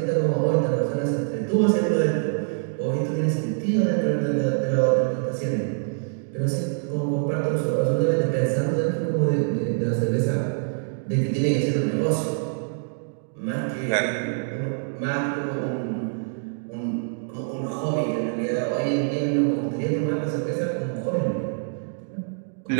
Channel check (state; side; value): silent; left; digital silence